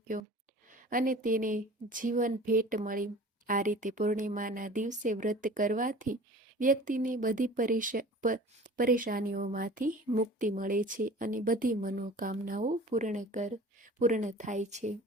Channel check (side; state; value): both; normal; correlation 0.43